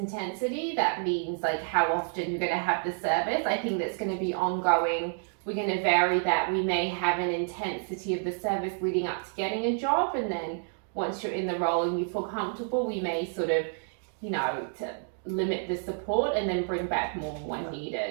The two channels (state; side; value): silent; left; 58 dB below the other